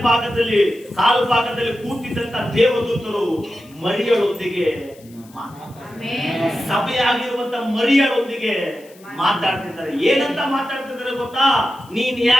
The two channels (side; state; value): left; noise; hiss, 26 dB below the sound